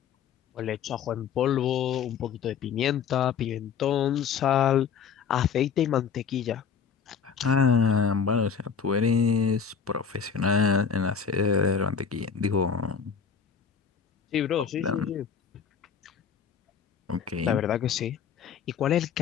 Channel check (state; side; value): quieter; right; 6.7 dB